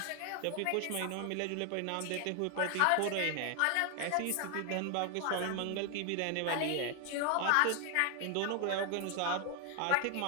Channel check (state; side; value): different; both; correlation 0.00